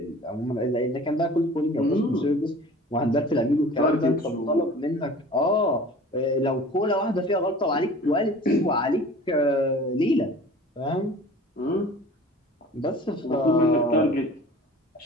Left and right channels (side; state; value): both; normal; correlation 0.43